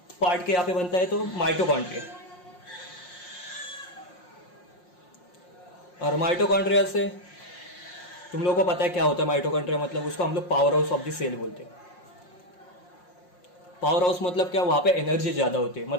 पार्ट के यहाँ पे बनता है? तो माइटोकॉन्ड्रिया। और माइटोकॉन्ड्रिया से तुम लोगों को पता है क्या होता है माइटोकॉन्ड्रिया? मतलब उसको हम लोग powerhouse of the cell बोलते हैं। पावर हाउस मतलब क्या, वहां पे एनर्जी ज्यादा होती है,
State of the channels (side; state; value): right; late; 5.6 ms